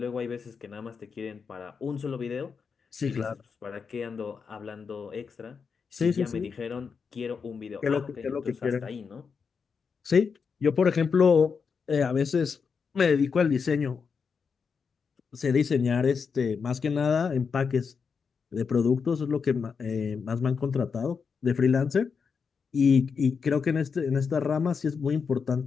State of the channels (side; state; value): right; quieter; 5.7 dB